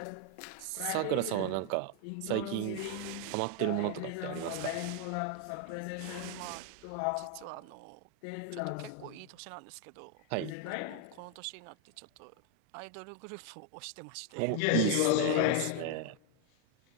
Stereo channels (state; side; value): different; both; correlation 0.01